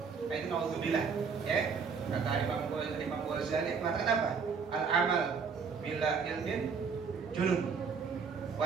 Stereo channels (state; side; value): quieter; left; 5.8 dB